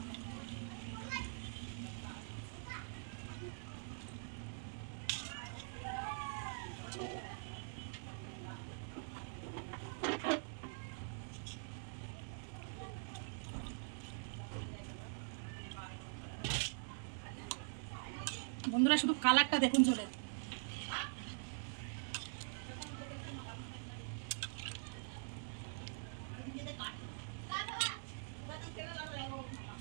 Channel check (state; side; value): silent; left; digital silence